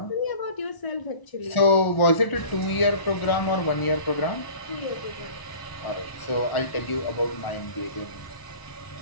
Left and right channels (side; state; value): right; late; 1.0 ms